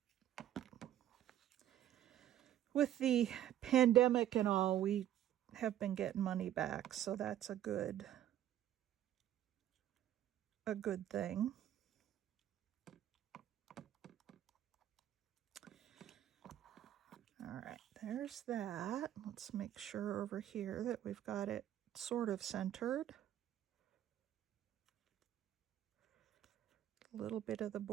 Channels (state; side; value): quieter; left; 11.9 dB